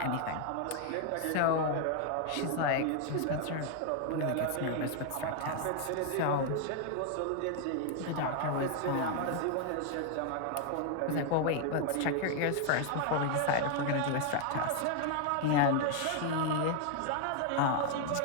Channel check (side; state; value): both; different; correlation 0.00